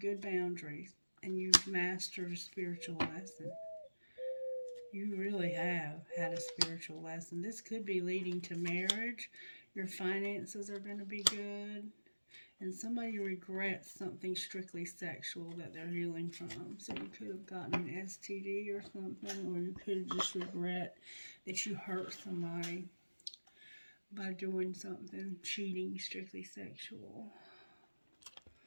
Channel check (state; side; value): inverted; both; correlation -1.00